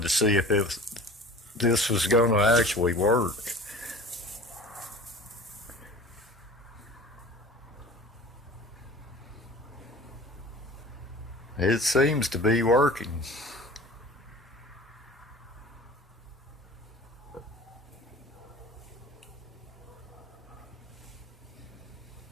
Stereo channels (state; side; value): normal; both; correlation 0.41